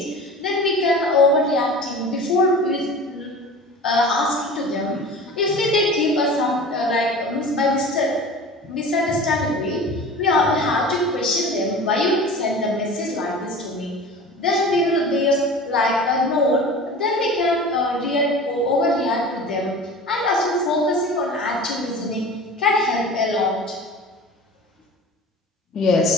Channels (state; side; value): normal; both; correlation 0.37